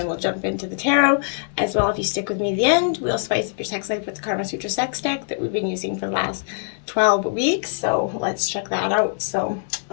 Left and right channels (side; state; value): right; silent; 64 dB below the other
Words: we'll jump into the tarot as well. If you stick with me to the end, we'll spice up your sex life with the Karma Sutra sex deck that we've been using for the last 12 weeks. So let's check that out. So